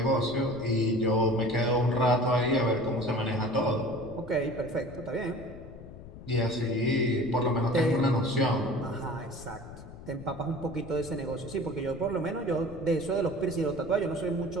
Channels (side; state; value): left; noise; rumble, 15 dB below the sound